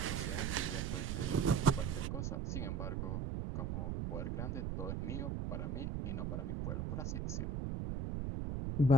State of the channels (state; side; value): noise; right; rumble, 1 dB below the sound